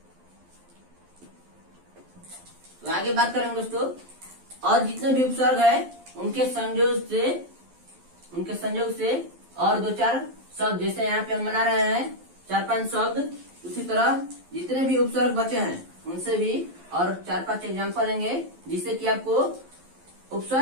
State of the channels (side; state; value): left; late; 11 ms